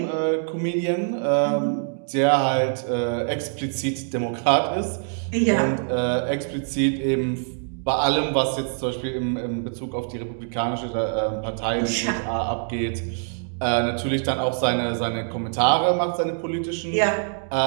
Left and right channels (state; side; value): silent; left; digital silence